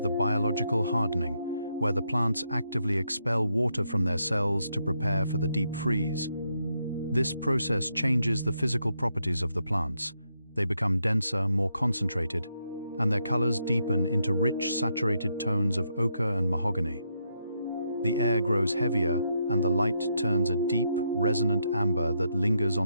biological hardening, where the plants actively expel water from their cells to prepare for the deep freeze. This process changes the physical properties of the plants. They become denser, more concentrated, and their colors deepen into rich, saturated tones of ochre and mahogany. The air grows heavier, and the light turns a deep, resonant amber that lingers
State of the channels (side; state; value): both; inverted; correlation -0.79